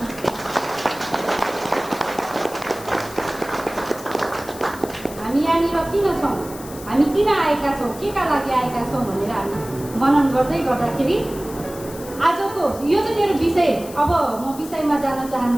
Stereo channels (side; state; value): left; noise; hiss, 16 dB below the sound